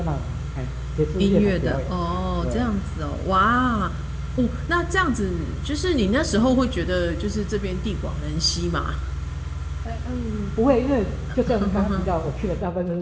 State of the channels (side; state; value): both; identical; correlation 1.00